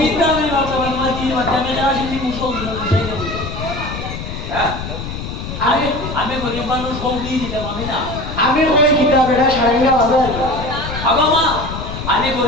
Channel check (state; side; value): noise; left; rumble, 7 dB below the sound